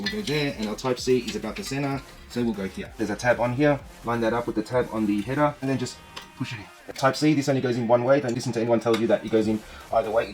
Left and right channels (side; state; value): both; identical; correlation 1.00